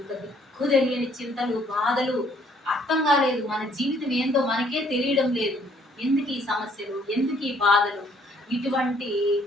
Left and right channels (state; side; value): normal; both; correlation 0.64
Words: దిక్కు తెలియని చింతలు, బాధలు, అర్థం కాలేదు, మన జీవితం ఏందో మనకే తెలియడం లేదు, ఎందుకు ఈ సమస్యలు, ఎందుకు ఈ బాధలు, ఇటువంటి